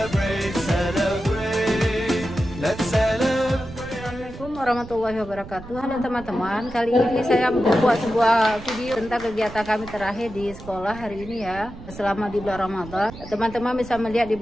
Warahmatullahi wabarakatuh. Halo teman-teman, kali ini saya membuat sebuah video tentang kegiatan kami terakhir di sekolah hari ini ya, selama di bulan Ramadan. Teman-teman bisa melihat di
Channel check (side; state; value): right; noise; rumble, 14 dB below the sound